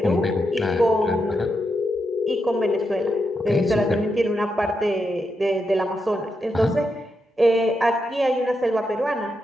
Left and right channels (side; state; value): both; normal; correlation 0.84